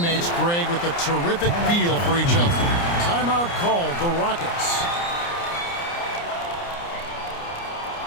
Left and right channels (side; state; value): right; late; 29 ms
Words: Greg, with a terrific feel for each other. Timeout called the Rockets.